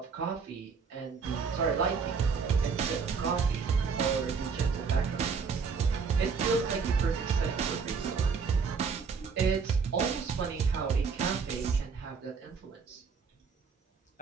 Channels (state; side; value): quieter; left; 5.6 dB